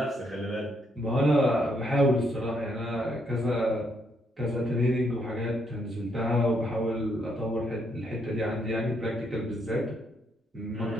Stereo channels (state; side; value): normal; both; correlation 0.74